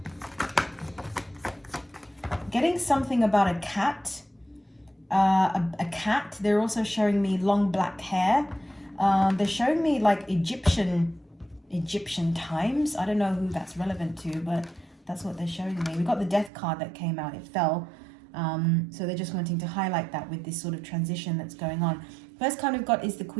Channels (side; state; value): left; drops out; at 16.5 s